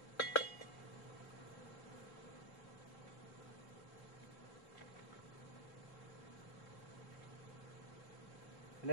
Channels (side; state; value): right; late; 3.8 ms